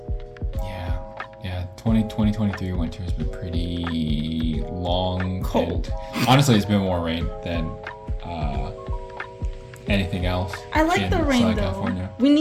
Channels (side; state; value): both; identical; correlation 1.00